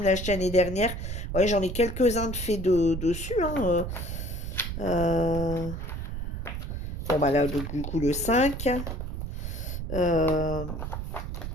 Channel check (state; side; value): noise; right; rumble, 5 dB below the sound